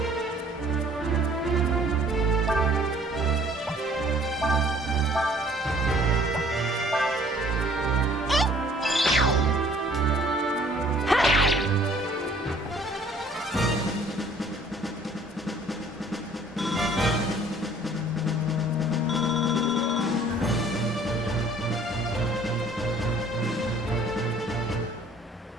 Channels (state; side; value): normal; both; correlation 0.56